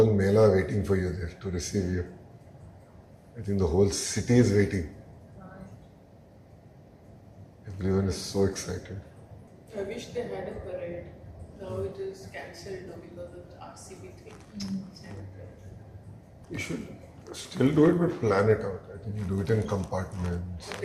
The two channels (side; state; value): both; identical; correlation 1.00